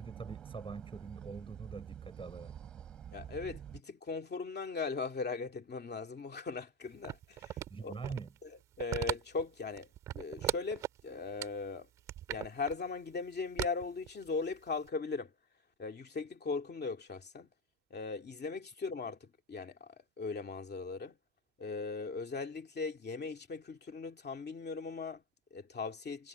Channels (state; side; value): normal; both; correlation 0.15